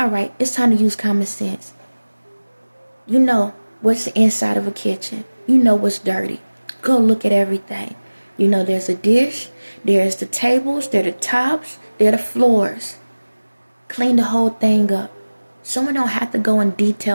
right, it's time to use common sense. You know what's the inside of a kitchen. You know what's dirty. Go look at everything. You know there's a dish, there's the tables, there are the tops, there are the floors. Clean the whole thing up. Someone don't have to go in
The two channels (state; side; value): inverted; both; correlation -1.00